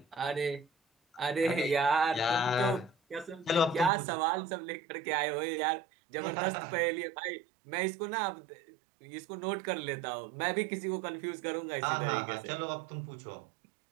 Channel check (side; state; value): left; drops out; at 3.9 s